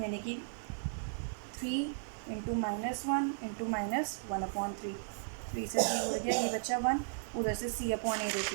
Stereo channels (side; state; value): left; silent; 54 dB below the other